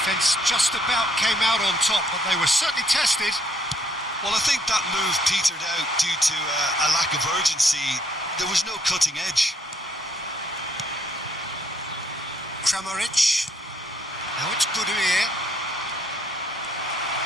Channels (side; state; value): both; normal; correlation 0.68